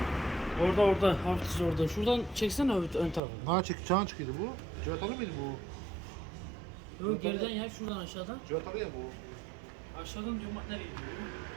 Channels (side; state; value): left; drops out; at 3.2 s